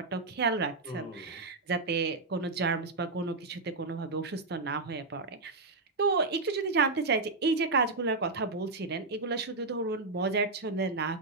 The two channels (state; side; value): quieter; left; 3.5 dB